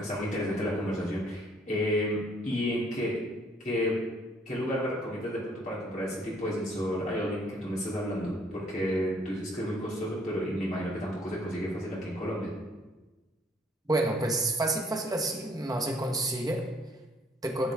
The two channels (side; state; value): both; normal; correlation 0.63